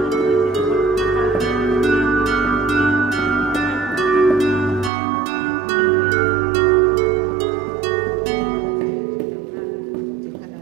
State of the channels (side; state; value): left; drops out; at 4.9 s